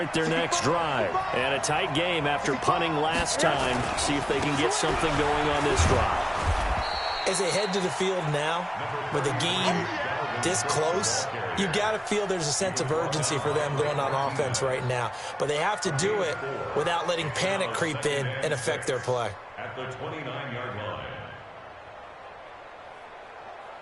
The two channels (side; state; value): both; identical; correlation 1.00